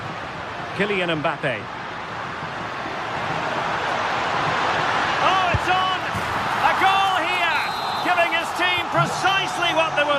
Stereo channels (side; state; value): both; identical; correlation 1.00